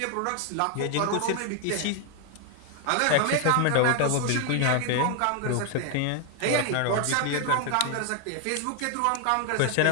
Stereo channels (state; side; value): different; both; correlation 0.00